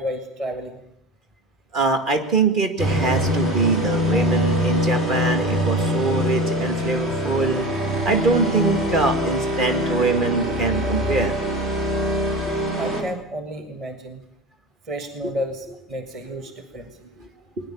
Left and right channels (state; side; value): normal; both; correlation 0.31